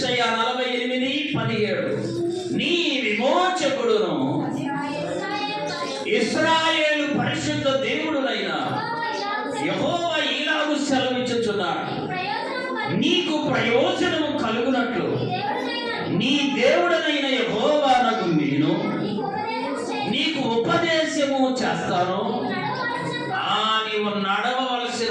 48:17 నీ విమోచకుడును ఇశ్రాయేలు పరిశుద్ధ దేవుడునైన యెహోవా ఇలాగు సెలవిచ్చుచున్నాడు, నీకు ప్రయోజనము కలుగునట్లు నీ దేవుడనైన యెహోవానగు నేను నీకు ఉపదేశము చేస్తాను. నీవు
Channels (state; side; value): identical; both; correlation 1.00